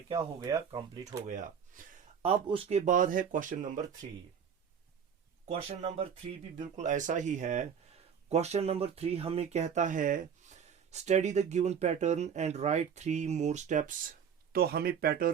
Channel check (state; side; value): quieter; left; 7.5 dB